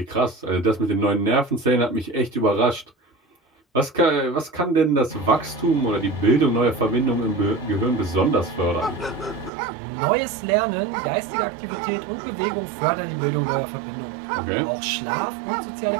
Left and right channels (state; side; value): drops out; left; at 9.5 s